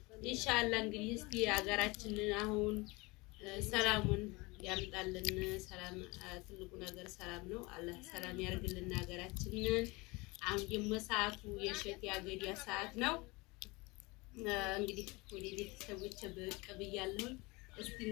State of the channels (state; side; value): quieter; right; 24.6 dB